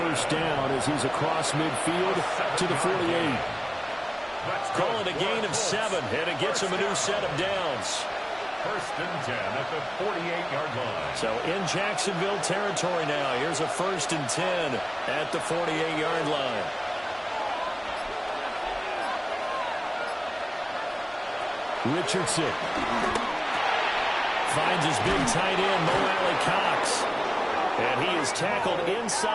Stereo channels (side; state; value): both; identical; correlation 1.00